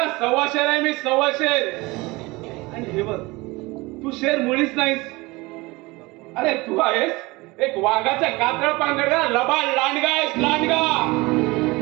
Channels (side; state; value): left; quieter; 22.8 dB